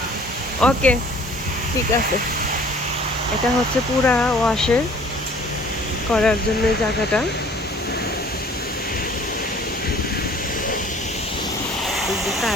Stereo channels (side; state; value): both; normal; correlation 0.52